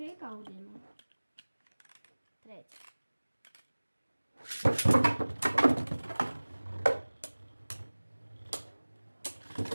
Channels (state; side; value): inverted; both; correlation -1.00